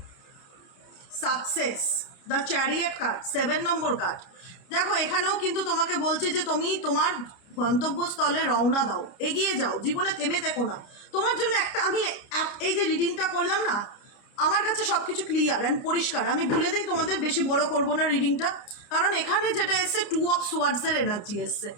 Success, the chariot card, 7 number card. দেখো এখানেও কিন্তু তোমাকে বলছে যে তুমি তোমার গন্তব্যস্থলে রওনা দাও, এগিয়ে যাও, জীবনে থেমে থেকো না। তোমার জন্য আমি এই যে রিডিংটা করলাম না, আমার কাছে সব কিছু ক্লিয়ার অ্যান্ড পরিষ্কার। আমি বলে দিই তোমাদের, বেশি বড় করব না রিডিংটা, কারণ এখানে যেটা এসছে 2 অফ সোয়ার্ডসের এনার্জি এসছে।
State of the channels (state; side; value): late; right; 29 ms